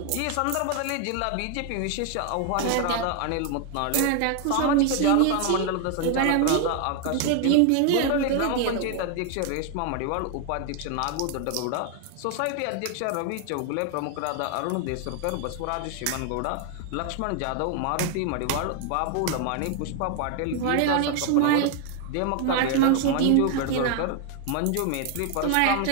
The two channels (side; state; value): both; different; correlation 0.00